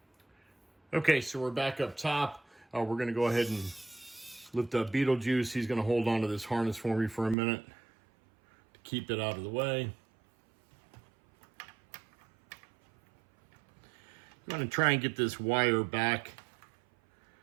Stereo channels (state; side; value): drops out; left; at 7.4 s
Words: Okay, so we're back up top. We're going to go ahead and lift up Beetlejuice. He's going to hold on to this harness for me for a minute to keep it out of the way. I'm going to try and get this wire back.